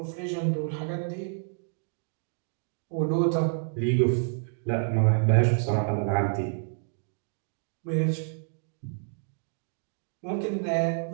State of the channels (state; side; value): silent; left; digital silence